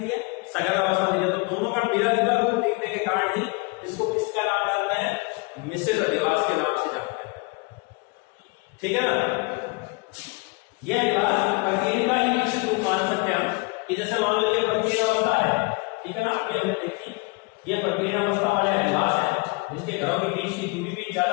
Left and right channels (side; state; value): right; quieter; 29.2 dB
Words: है? सघन अवस्था दिख रही है। तो दोनों का मिला जुला रूप देखने के कारण ही इसको किसका नाम जानते हैं? मिश्रित अधिवास के नाम से जानते हैं। ठीक है ना। यह अधिवास प्रकीर्ण का ही विकसित रूप मान सकते हैं कि जैसे मान लो ये प्रकीर्ण अवस्था है, ठीक है ना। आगे हमने देखी ये प्रकीर्ण अवस्था वाले अधिवास है जिसके घरों के बीच की दूरी भी